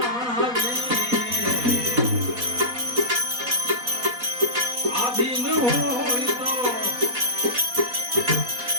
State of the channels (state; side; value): late; left; 4.1 ms